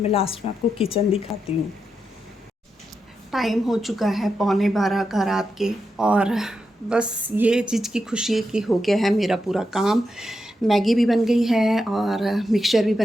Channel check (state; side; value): normal; both; correlation 0.86